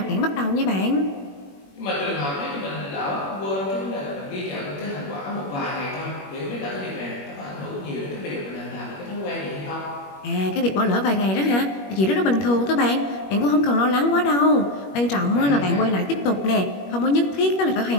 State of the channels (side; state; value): right; late; 21 ms